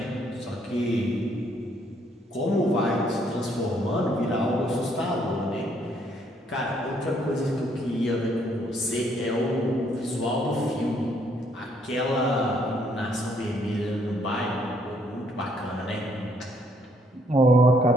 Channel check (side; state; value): both; normal; correlation 0.68